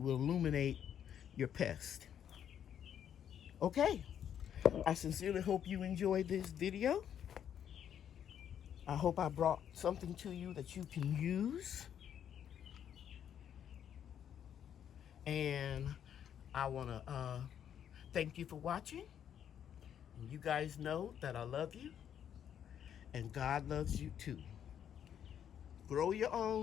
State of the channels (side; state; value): right; quieter; 9.3 dB